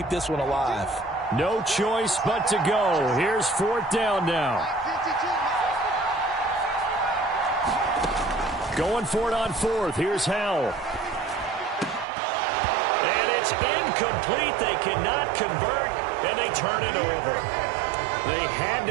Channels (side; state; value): left; drops out; at 12.1 s